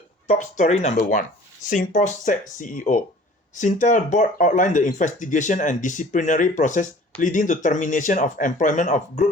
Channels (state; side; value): normal; both; correlation 0.48